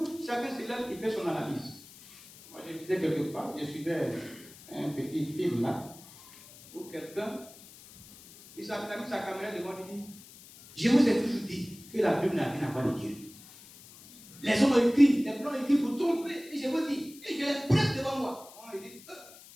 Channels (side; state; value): left; noise; hiss, 20 dB below the sound